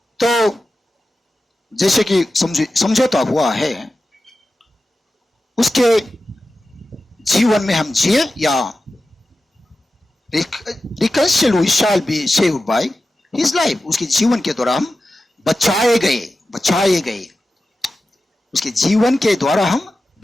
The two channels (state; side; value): normal; both; correlation 0.93